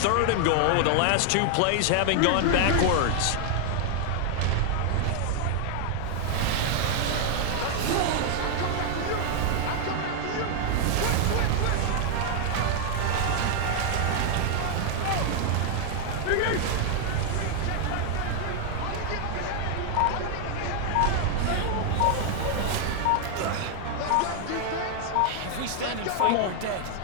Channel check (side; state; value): both; different; correlation 0.00